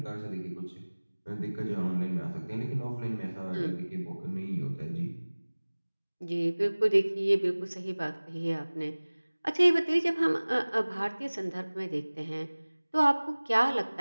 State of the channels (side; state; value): both; inverted; correlation -1.00